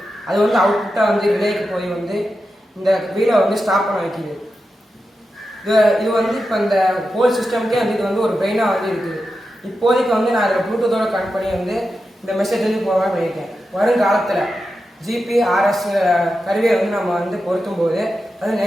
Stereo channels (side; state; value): both; normal; correlation 0.90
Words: அது அவுட்புட்டாக ரிலேக்கு போய் இந்த வீலை ஸ்டாப் பண்ண வைக்கிது. இது இப்போ இந்த ஹோல் சிஸ்டம்க்கே இது ஒரு பிரெயினாக இருக்குது. இப்போதைக்கு நான் அதில் ப்ளூடூத்தோட கனெக்ட் பண்ணி இந்த மெசேஜ் போகலாம் பண்ணியிருக்கேன். வருங்காலத்தில் ஜிபிஆர்எஸ் கருவியை நம்ம பொருத்தும் போது அது